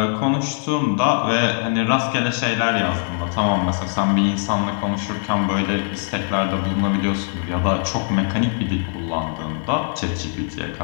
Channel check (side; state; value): right; silent; 65 dB below the other